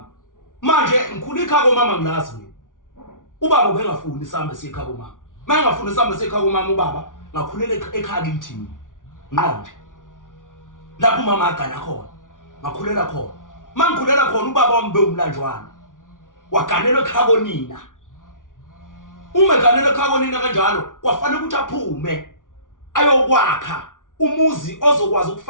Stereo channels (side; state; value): right; late; 0.88 ms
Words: manje ngikhulika ekhaya komama ngilazi mina ubaba ubengafuni isambe sekhaya komama mayengafuni isambe sekhaya komama ubaba ngakhulela ekhaya kithi nqonje lapho umama agana khona ngakhulela khona mangikhulela khona ubaba wami beumlanjwana waganelwe ekhaya konina uma eganelwe ekhaya konina kanjalo kwafanele ukuthi aphume ayokwakha umuzi ozokwazi